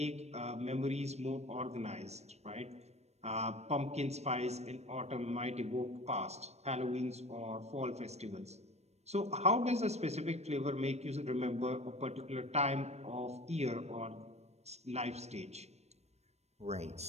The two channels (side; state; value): left; late; 0.31 ms